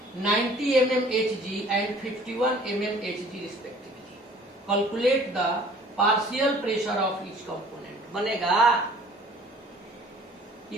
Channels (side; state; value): both; normal; correlation 0.52